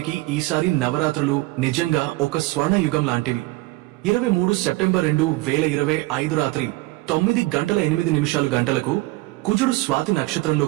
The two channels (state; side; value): quieter; left; 20.9 dB